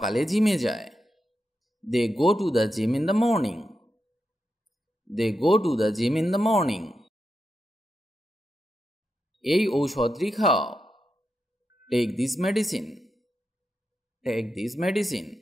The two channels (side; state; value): both; normal; correlation 0.87